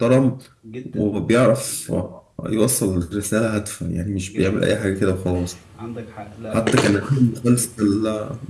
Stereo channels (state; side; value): identical; both; correlation 1.00